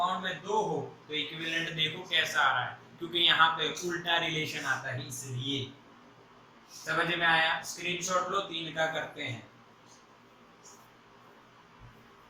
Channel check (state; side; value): identical; both; correlation 1.00